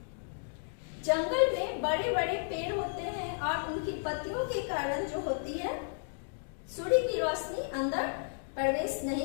जंगल में बड़े बड़े पेड़ होते हैं और उनकी पत्तियों के कारण जो होती है सूर्य की रोशनी अंदर प्रवेश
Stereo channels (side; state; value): right; silent; digital silence